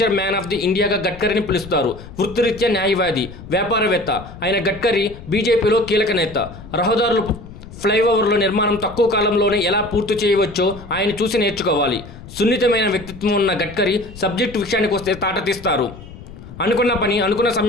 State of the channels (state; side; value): noise; left; rumble, 16 dB below the sound